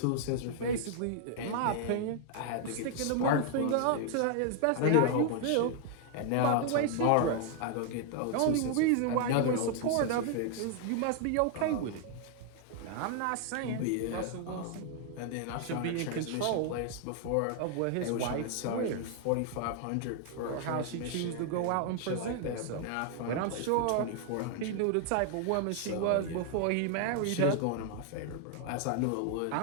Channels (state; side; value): different; both; correlation 0.00